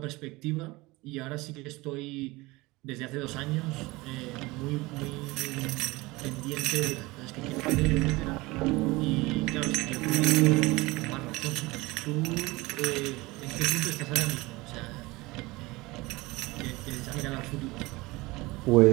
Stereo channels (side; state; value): left; quieter; 22.0 dB